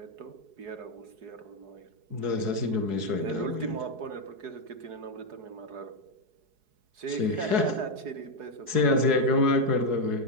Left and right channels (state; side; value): late; left; 4.7 ms